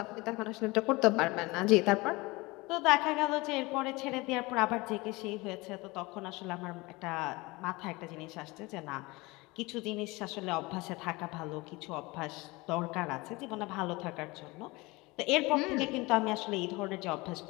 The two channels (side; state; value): right; quieter; 23.2 dB